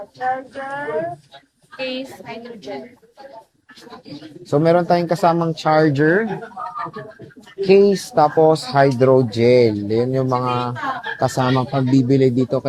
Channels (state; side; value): identical; both; correlation 1.00